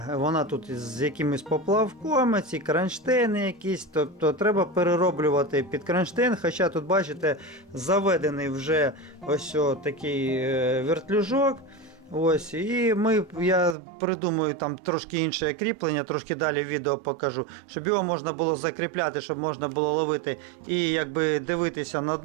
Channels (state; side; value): drops out; left; at 13.8 s